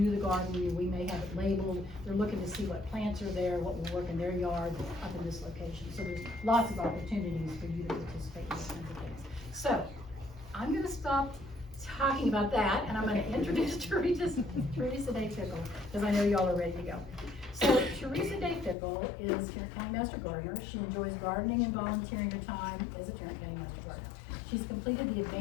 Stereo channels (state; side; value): drops out; right; at 18.8 s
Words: the garden, we may have it labeled, they're looking to see what plants are there, what will work in their yard, up in this location. So there's lots of opportunities for you to participate in those kinds of things. So, I'm gonna stop talking about that, and I'm gonna introduce Teresa Day Fickle, because I know y'all are ready to go. So, Teresa Day Fickle is Tarrant County Master Gardener. She enjoys gardening and volunteering her time as a Tarrant County Master Gardener. She's completed the